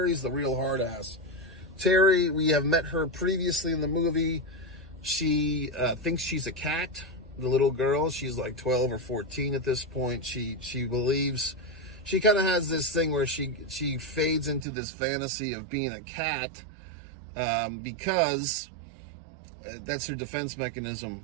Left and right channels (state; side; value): drops out; left; at 14.7 s